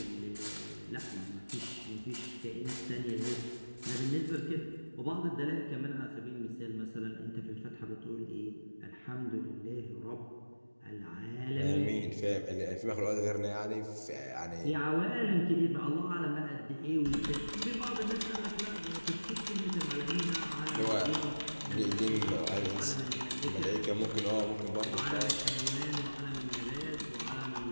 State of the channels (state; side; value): inverted; both; correlation -1.00